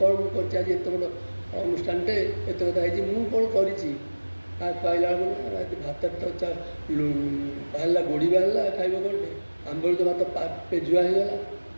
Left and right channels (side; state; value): both; inverted; correlation -1.00